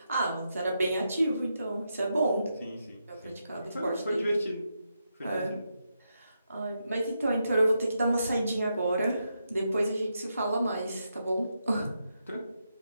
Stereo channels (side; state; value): both; inverted; correlation -0.84